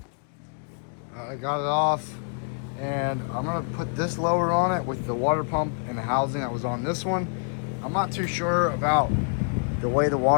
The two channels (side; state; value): right; silent; 61 dB below the other